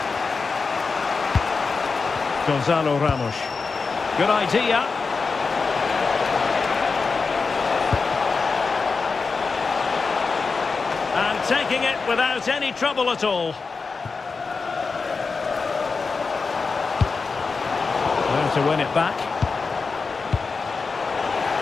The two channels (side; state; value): right; quieter; 4.6 dB